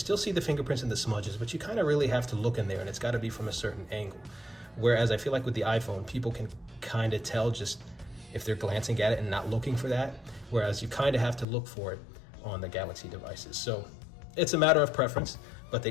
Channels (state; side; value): drops out; right; at 11.5 s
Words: see the fingerprints and the smudges, but you kind of really have to look in there, and it's got to be from a certain angle. Whereas I feel like with the iPhone, people can kind of tell just if they're glancing at it and not looking for that, whereas you kind of have to look for it on the Galaxy devices. So it's a matter of preference, but